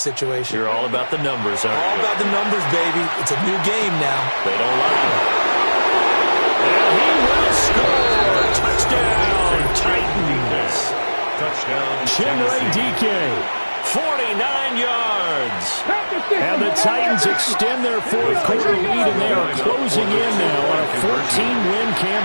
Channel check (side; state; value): both; inverted; correlation -1.00